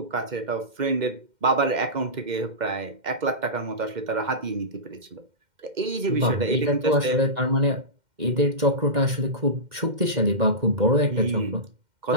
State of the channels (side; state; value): left; late; 2.1 ms